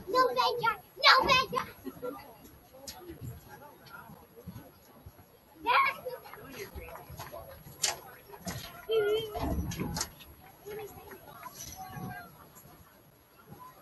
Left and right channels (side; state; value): both; identical; correlation 1.00